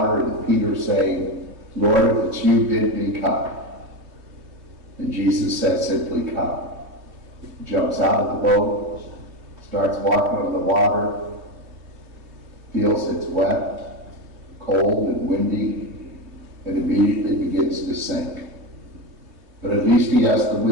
and Peter saying, "Lord, if it's you, bid me come." And Jesus says simply, "Come." Jumps out of the boat, starts walking on the water, feels it's wet, cold and windy, and immediately begins to sink. But at least he has the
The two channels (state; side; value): late; left; 3.1 ms